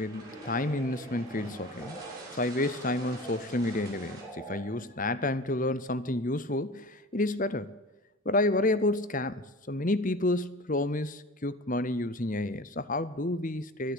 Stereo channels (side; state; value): both; normal; correlation 0.38